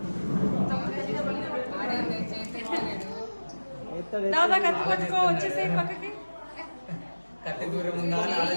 దాదా కత్తి పట్టుకో వచ్చేసి పక్కకి కత్తి దూరం ఉందా అని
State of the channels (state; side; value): inverted; both; correlation -1.00